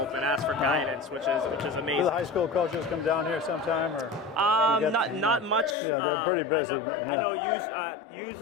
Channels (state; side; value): drops out; right; at 5.8 s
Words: and ask for guidance, which is amazing. Do the high school coaches come down here sometime, or not much. Yeah, they're pretty busy. I know